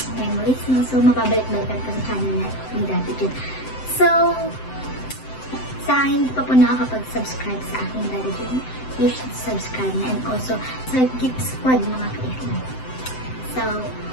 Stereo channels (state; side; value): late; right; 7.8 ms